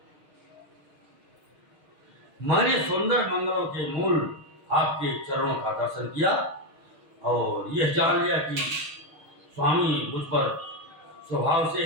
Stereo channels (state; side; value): late; left; 6.5 ms